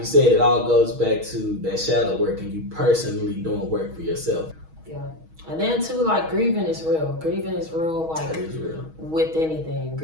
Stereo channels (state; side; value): late; left; 6.3 ms